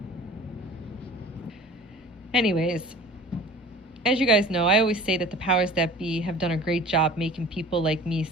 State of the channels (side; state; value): both; normal; correlation 0.42